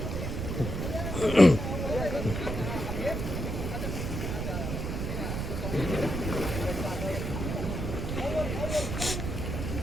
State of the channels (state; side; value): noise; right; rumble, 3 dB below the sound